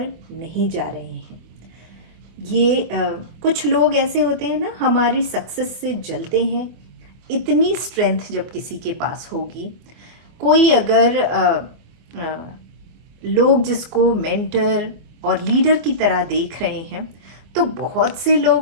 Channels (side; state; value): left; late; 24 ms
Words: नहीं जा रहे हैं. ये कुछ लोग ऐसे होते हैं ना, हमारी सक्सेस से जलते हैं. इतनी स्ट्रेंथ जब किसी के पास होगी, कोई अगर लोग जिसको मेंटर और लीडर की तरह देख रहे हैं, तो बहुत से